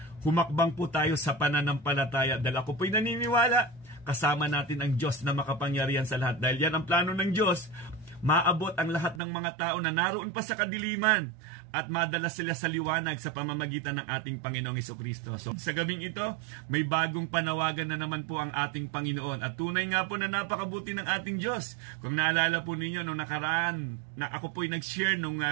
humakbang po tayo sa pananampalataya. Dahil ako po'y naniniwala, kasama natin ang Diyos na makapangyarihan sa lahat. Dahil yan ang plano ng Diyos, maabot ang lahat ng mga tao na naroon pa sa kadiliman at madala sila sa liwanag sa pamamagitan ng ating Panginoong Hesukristo. So, sa gabing ito, may bagong panawagan na naman po ang ating Panginoon. At tunay nga po na napakabuti ng ating Diyos. Kung naalala po ninyo, nung nakaraan, na ako po'y nag-share nung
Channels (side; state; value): left; drops out; at 9.2 s